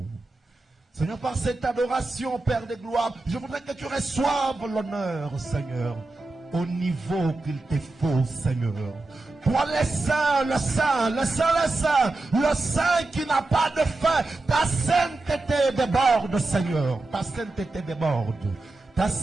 Seigneur, par cette adoration, Père de gloire, je voudrais que tu reçoives l'honneur, Seigneur, au niveau qu'il te faut, Seigneur. Toi le Saint, le Saint, le Saint, le Saint, le Saint qui n'a pas de fin. Ta sainteté déborde, Seigneur. Ta sainteté déborde. Ta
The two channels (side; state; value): left; quieter; 3.1 dB